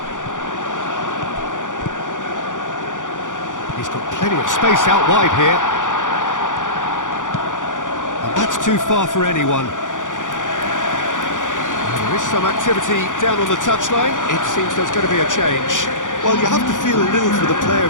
He's got plenty of space out wide here. And That's too far for anyone. There is some activity down on the touchline. It seems there's going to be a change. Well, you have to feel a little for the player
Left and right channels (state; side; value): late; right; 0.87 ms